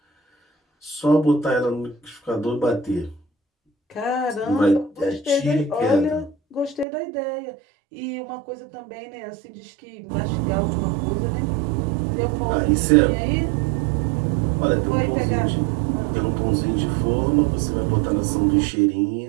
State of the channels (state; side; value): drops out; left; at 6.9 s